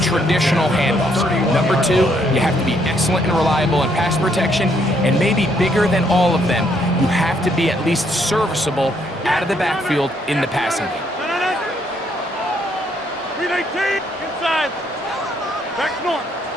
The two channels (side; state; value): both; normal; correlation 0.71